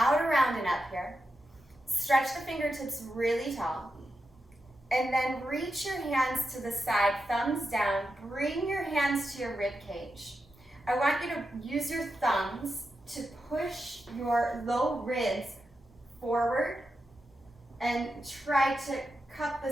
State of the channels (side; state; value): both; normal; correlation 0.88